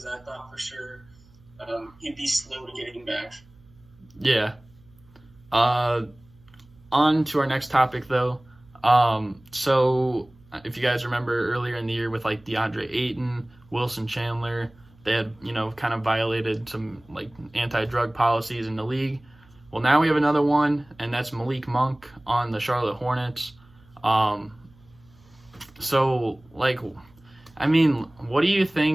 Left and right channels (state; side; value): noise; right; hum, 28 dB below the sound